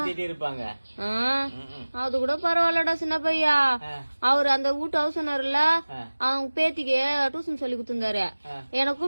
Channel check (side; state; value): both; inverted; correlation -1.00